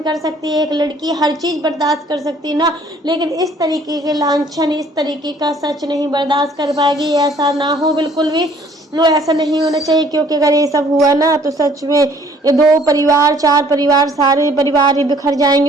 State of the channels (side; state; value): both; normal; correlation 0.58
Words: कर सकती है, एक लड़की हर चीज बर्दाश्त कर सकती है ना, लेकिन इस तरीके के लांछन, इस तरीके का सच नहीं बर्दाश्त कर पाएगी। ऐसा ना हो बिल्कुल भी, नो ऐसा नहीं होना चाहिए, क्योंकि अगर ये सब हुआ ना तो सच में ये 2 परिवार 4 परिवार सारे परिवार ही बिखर